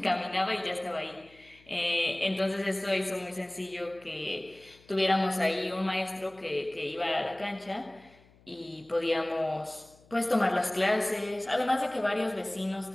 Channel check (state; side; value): noise; left; hum, 28 dB below the sound